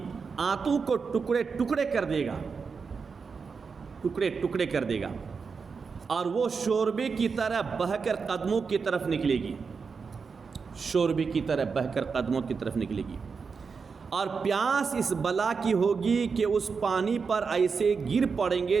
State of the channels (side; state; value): left; quieter; 5.3 dB